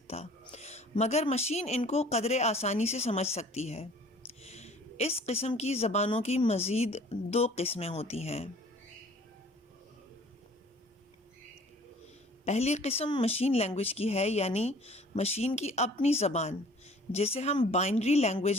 مگر مشین ان کو قدرے آسانی سے سمجھ سکتی ہے۔ اس قسم کی زبانوں کی مزید دو قسمیں ہوتی ہیں۔ پہلی قسم مشین لینگویج کی ہے، یعنی مشین کی اپنی زبان، جسے ہم بائنری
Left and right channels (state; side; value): normal; both; correlation 0.51